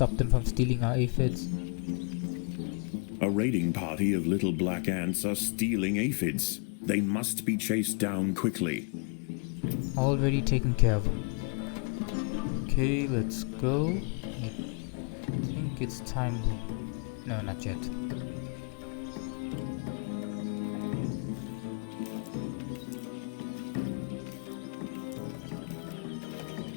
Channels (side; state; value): right; quieter; 39.1 dB